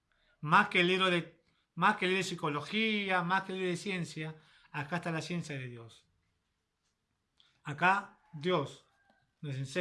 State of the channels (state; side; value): identical; both; correlation 1.00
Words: Más que el libro de psicología, más que el libro de ciencia, acá está la ciencia de Dios. Acá Dios nos